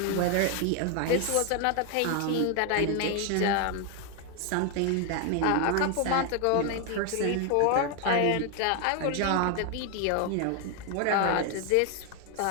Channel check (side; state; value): both; different; correlation 0.01